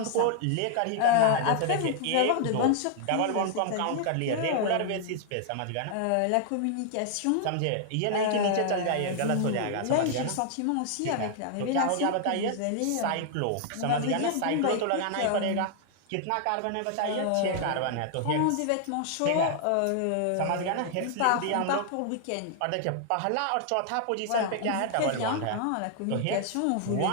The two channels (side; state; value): both; different; correlation 0.00